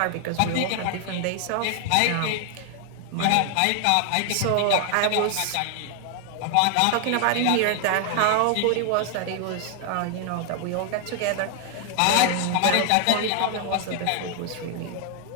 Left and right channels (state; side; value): different; both; correlation 0.00